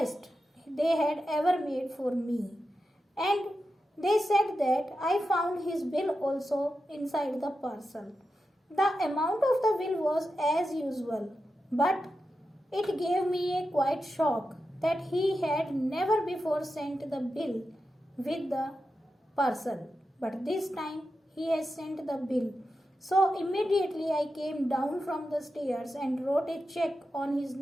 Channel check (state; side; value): normal; both; correlation 0.90